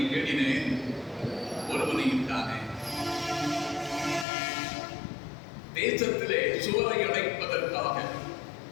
தேடினேன், ஒருவனையும் தானே. தேசத்திலே சுவரை அடைப்பதற்காக,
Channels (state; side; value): drops out; right; at 4.2 s